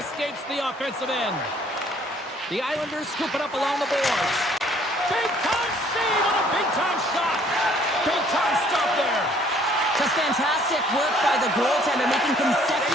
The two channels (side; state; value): both; normal; correlation 0.60